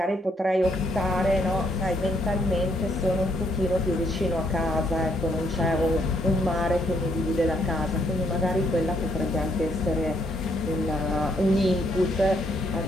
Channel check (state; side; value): normal; both; correlation 0.72